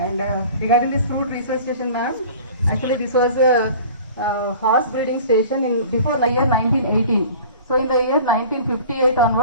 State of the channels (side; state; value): both; inverted; correlation -0.43